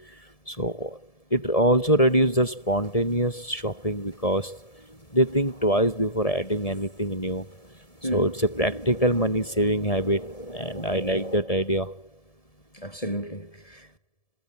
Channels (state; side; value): late; right; 1.7 ms